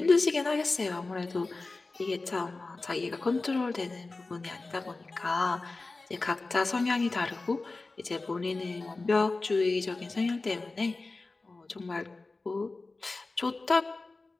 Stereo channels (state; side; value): quieter; right; 3.5 dB